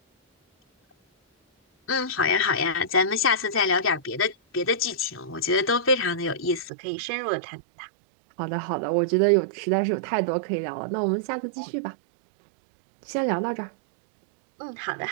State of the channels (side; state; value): left; drops out; at 6.7 s